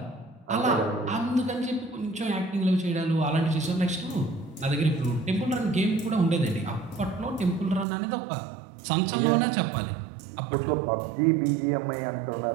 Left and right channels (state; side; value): drops out; left; at 7.9 s